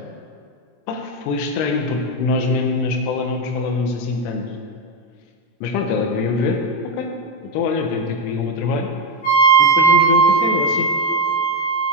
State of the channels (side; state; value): right; late; 26 ms